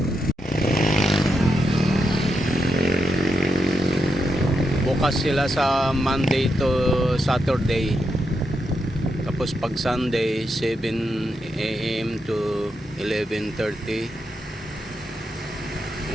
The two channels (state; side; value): normal; both; correlation 0.83